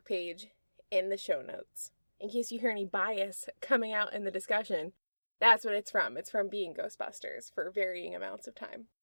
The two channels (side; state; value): both; inverted; correlation -1.00